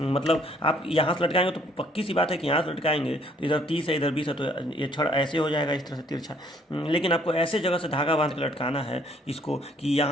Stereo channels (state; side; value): normal; both; correlation 0.63